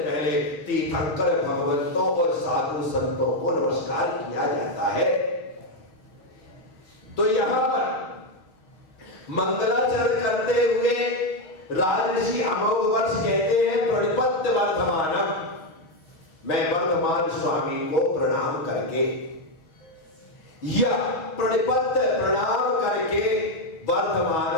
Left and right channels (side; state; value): right; late; 6.4 ms